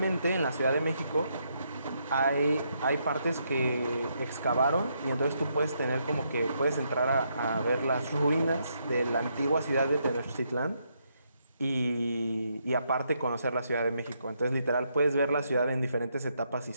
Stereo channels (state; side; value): inverted; both; correlation -0.77